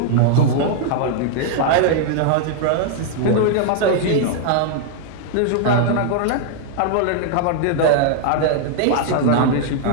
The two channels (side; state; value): both; different; correlation 0.00